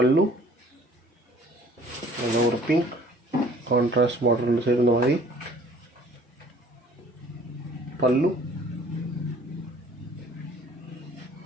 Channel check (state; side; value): normal; both; correlation 0.54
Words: and over pink contrast border சேர்ந்த மாதிரி pallu